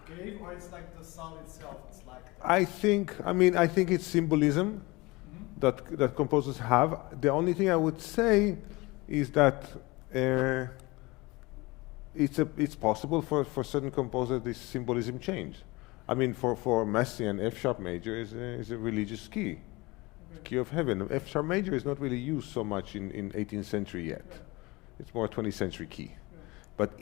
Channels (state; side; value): quieter; right; 23.2 dB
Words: gave, or it's like the sound itself? It's like. I think it's symbolism that composers have. The only thing I would say is that it's possible for certain composers this symbolism change. I mean, for Messiaen, F sharp major is a religious key. Key of heaven. F sharp major is not really used so much in 18th century yet. Right. It's more 20th century key. Right. But